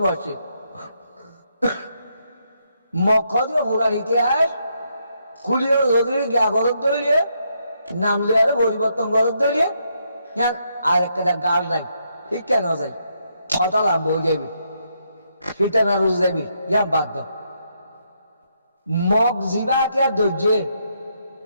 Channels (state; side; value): inverted; both; correlation -0.77